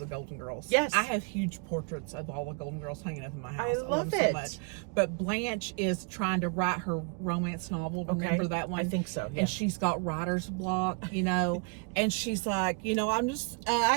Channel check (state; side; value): quieter; left; 35.9 dB